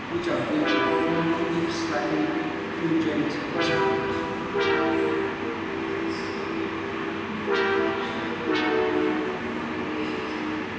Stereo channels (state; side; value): identical; both; correlation 1.00